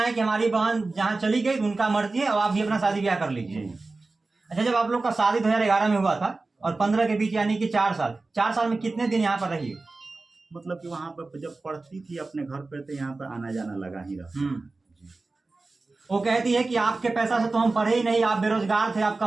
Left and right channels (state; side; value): quieter; left; 3.5 dB